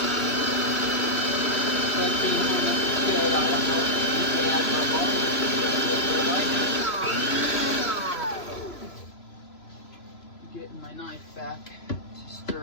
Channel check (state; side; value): late; right; 2.8 ms